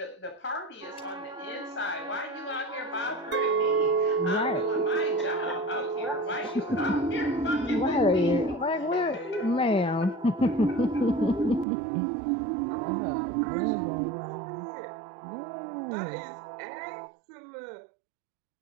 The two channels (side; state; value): left; drops out; at 11.7 s